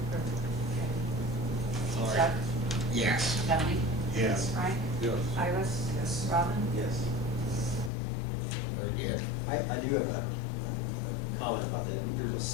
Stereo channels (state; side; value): drops out; right; at 7.9 s